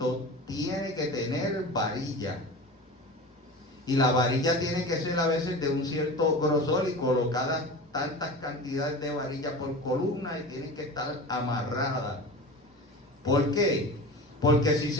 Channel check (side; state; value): both; normal; correlation 0.33